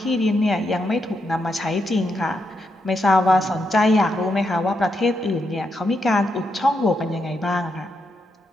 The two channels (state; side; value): normal; both; correlation 0.82